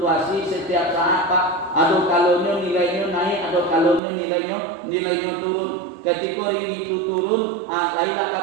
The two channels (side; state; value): left; drops out; at 4.0 s